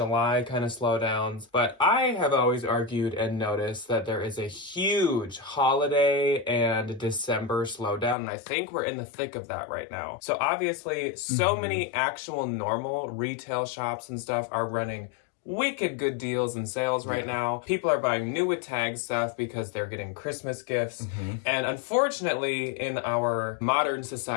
kind of slowdowns, but I have always argued and noticed that there is a huge holiday and December slowdown, and I think we're in the thick of that right now. So obviously, so many actual normal retail shops and stuff are running wicked good deals and sales right now. People are buying new with tag stuff because they're getting Christmas gifts. And unfortunately, in our modern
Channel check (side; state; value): right; drops out; at 8.2 s